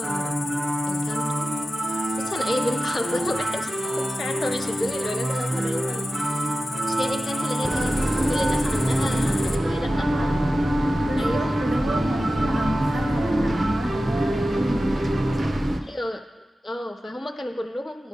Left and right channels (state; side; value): normal; both; correlation 0.94